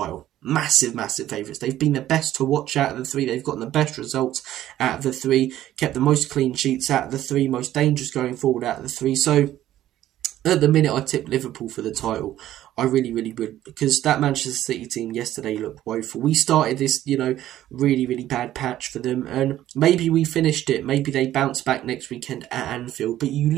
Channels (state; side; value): quieter; left; 13.2 dB